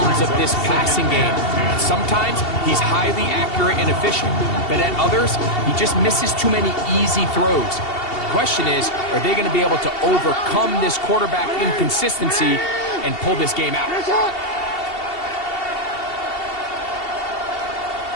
of this passing game. Sometimes he's highly accurate and efficient, but at others, he just misses too many easy throws. The question is, are they going to be able to overcome this quarterback inconsistency and pull this game out?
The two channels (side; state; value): right; late; 2.7 ms